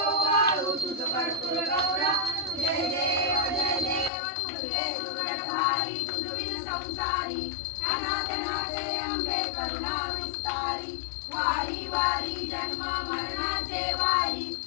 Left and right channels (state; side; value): drops out; right; at 4.1 s